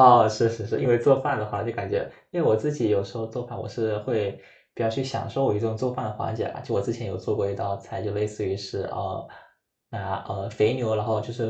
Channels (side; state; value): both; identical; correlation 1.00